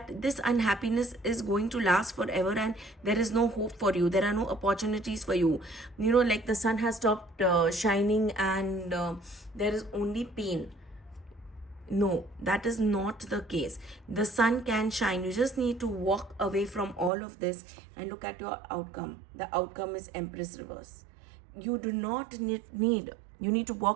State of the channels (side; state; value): left; drops out; at 17.1 s